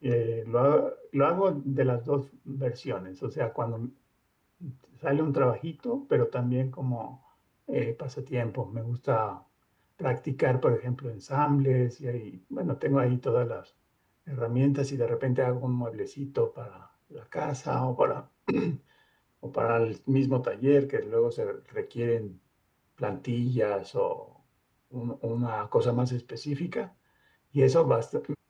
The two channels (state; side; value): identical; both; correlation 1.00